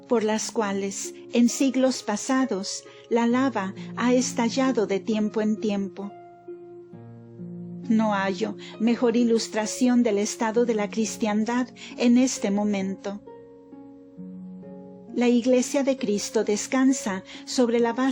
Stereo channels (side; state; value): both; identical; correlation 1.00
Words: por las cuales en siglos pasados la lava ha estallado de tiempo en tiempo. No hallo mejor ilustración del estado de la cristiandad en este momento. La Iglesia de Cristo descansa sobre la